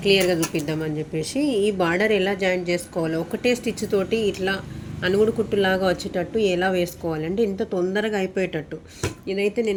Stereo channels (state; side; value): identical; both; correlation 1.00